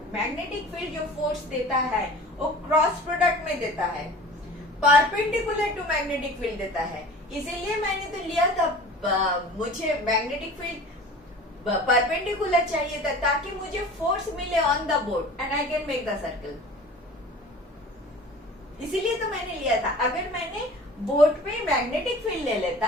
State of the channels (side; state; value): both; normal; correlation 0.41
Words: मैग्नेटिक फील्ड जो फोर्स देता है वो क्रॉस प्रोडक्ट में देता है, परपेंडिकुलर टू मैग्नेटिक फील्ड देता है. इसीलिए मैंने तो लिया था, मुझे मैग्नेटिक फील्ड परपेंडिकुलर चाहिए था ताकि मुझे फोर्स मिले on the board and I can make the circle. इसीलिए तो मैंने लिया था. अगर मैंने बोर्ड पे मैग्नेटिक फील्ड ले